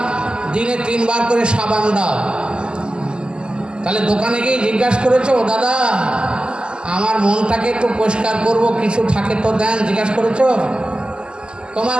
দিনে 3 বার করে সাবান দাও। তাহলে দোকানে গিয়ে জিজ্ঞাসা করেছো, দাদা আমার মনটাকে একটু পরিষ্কার করব, কিছু থাকে তো দেন, জিজ্ঞাসা করেছো? তোমার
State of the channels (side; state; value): left; late; 0.049 ms